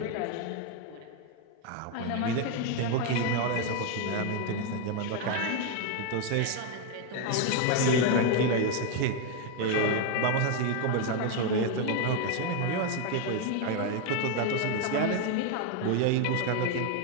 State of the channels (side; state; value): both; different; correlation 0.01